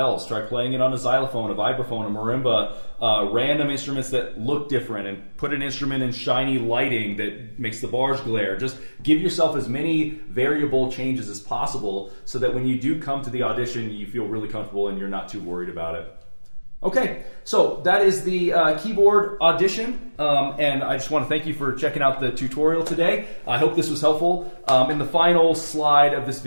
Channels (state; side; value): inverted; both; correlation -1.00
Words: Try playing it on a xylophone, a vibraphone, a marimba, random instruments that look different, and put an instrument in shiny lighting that makes the bars glare. Just give yourself as many variable changes as possible so that when you do come to the audition, you feel really comfortable and you're not too worried about it. Okay, so that is the keyboard audition, and I just want to thank you for checking out the tutorial today. I hope this was helpful. In the final slide of this